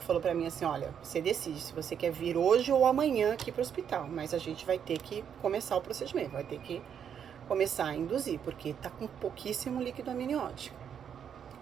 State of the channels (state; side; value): quieter; left; 8.1 dB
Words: falou pra mim assim, olha, você decide se você quer vir hoje ou amanhã aqui pro hospital, mas a gente vai ter que começar o procedimento, vai ter que começar a induzir, porque tá com pouquíssimo líquido amniótico.